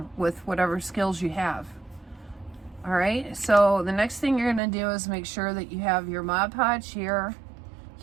with whatever skills you have. All right, so the next thing you're going to do is make sure that you have your Mod Podge here,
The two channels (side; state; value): left; drops out; at 4.6 s